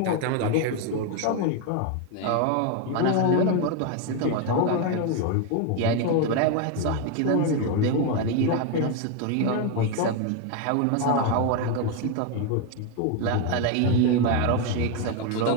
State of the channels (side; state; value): both; different; correlation 0.01